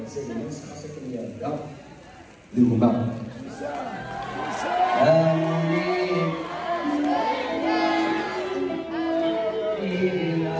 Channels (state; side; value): identical; both; correlation 1.00